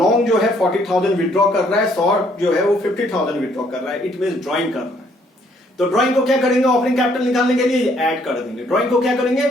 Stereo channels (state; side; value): normal; both; correlation 0.66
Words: जो है 40,000 विड्रॉ कर रहा है, शॉर्ट जो है वो 50,000 विड्रॉ कर रहा है। इट मीन ड्रॉइंग कर रहा है। तो ड्रॉइंग को क्या करेंगे, ओपनिंग कैपिटल निकालने के लिए ऐड कर देंगे। ड्रॉइंग को क्या करेंगे,